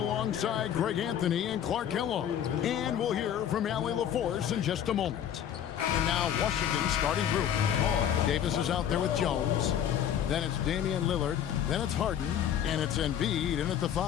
Greg Anthony and Clark Kellogg. And we'll hear from Allie LaForce in just a moment. And now Washington's starting group. Davis is out there with Jones. Then it's Damian Lillard. Then it's Harden. And it's Embiid in at the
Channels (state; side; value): quieter; right; 9.7 dB